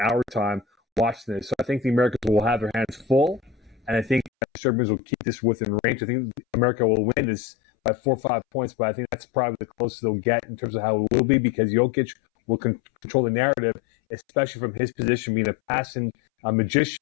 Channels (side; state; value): right; drops out; at 4.3 s